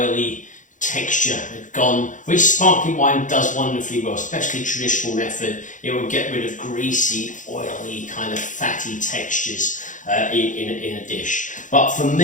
texture had gone, which sparkling wine does wonderfully well, especially traditional method. It will get rid of greasy, oily, kind of fatty textures in a dish. But for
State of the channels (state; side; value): late; right; 0.37 ms